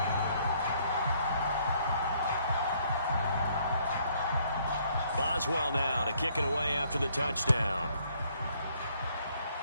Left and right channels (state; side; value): inverted; both; correlation -0.66